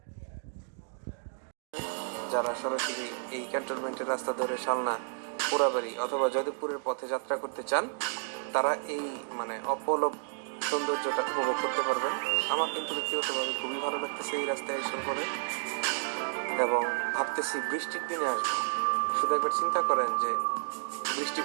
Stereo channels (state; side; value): silent; left; digital silence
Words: যারা সরাসরি এই ক্যান্টনমেন্টের রাস্তা ধরে শালনা, পোড়াবাড়ি অথবা যদবপুরের পথে যাত্রা করতে চান তারা এই অপলক সৌন্দর্যটা উপভোগ করতে পারবেন। আমার কিন্তু ব্যক্তিগতভাবে খুবই ভালো লাগতেছে এই রাস্তায় এসে পরে, এবং ভাবতেছি বৃষ্টির দিনে আসবো। শুধু একবার চিন্তা করেন যে বৃষ্টি